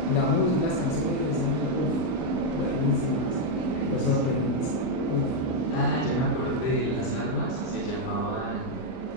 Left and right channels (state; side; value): late; right; 39 ms